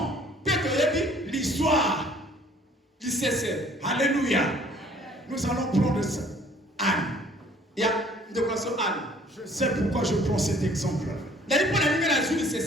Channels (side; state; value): both; normal; correlation 0.56